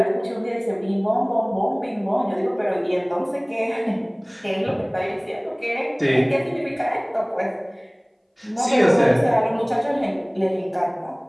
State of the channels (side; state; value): both; identical; correlation 1.00